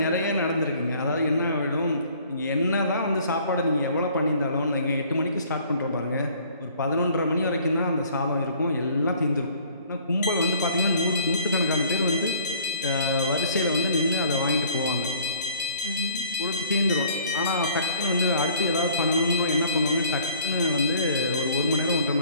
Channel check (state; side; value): inverted; both; correlation -0.54